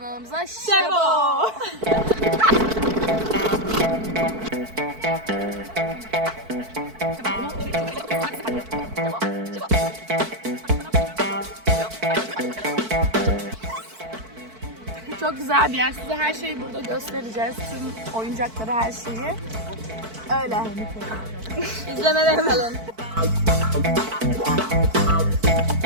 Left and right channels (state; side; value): late; left; 4.5 ms